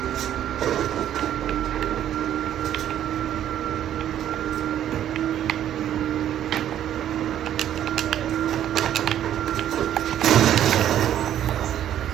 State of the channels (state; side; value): quieter; left; 11.0 dB